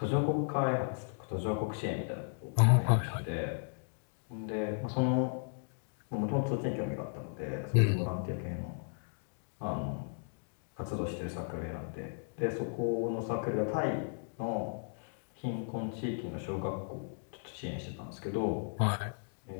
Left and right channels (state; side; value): silent; right; digital silence